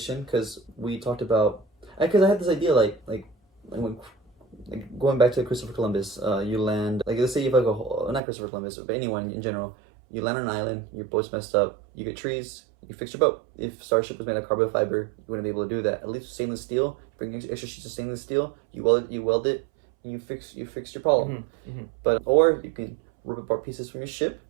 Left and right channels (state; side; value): drops out; left; at 8.2 s